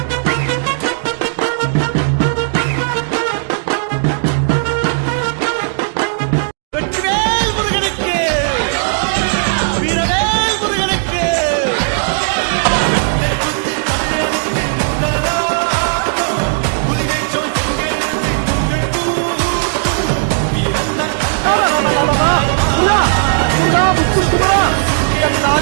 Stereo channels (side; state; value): left; silent; digital silence